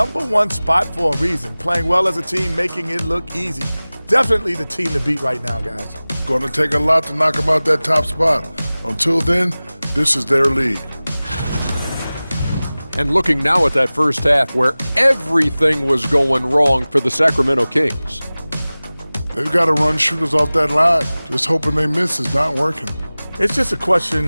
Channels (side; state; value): both; inverted; correlation -0.98